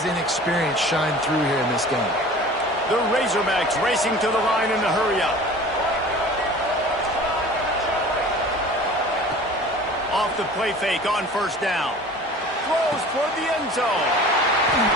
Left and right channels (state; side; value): normal; both; correlation 0.43